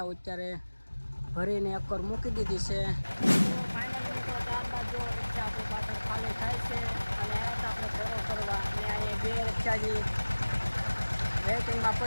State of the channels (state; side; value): inverted; both; correlation -1.00